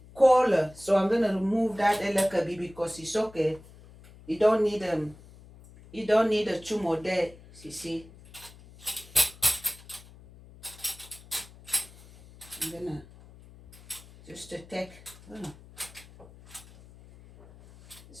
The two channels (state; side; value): noise; left; hum, 21 dB below the sound